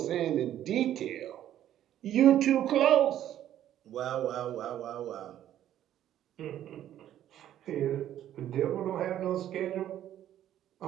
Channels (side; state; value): left; quieter; 11.7 dB